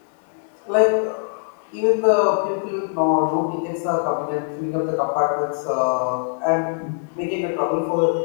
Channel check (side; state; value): right; silent; 64 dB below the other